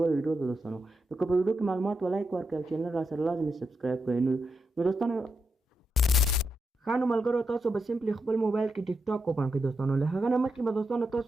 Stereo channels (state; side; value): normal; both; correlation 0.85